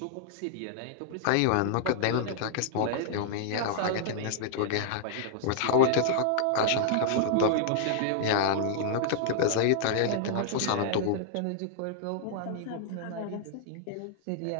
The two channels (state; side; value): different; both; correlation -0.01